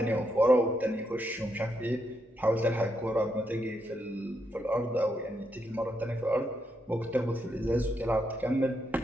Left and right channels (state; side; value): normal; both; correlation 0.80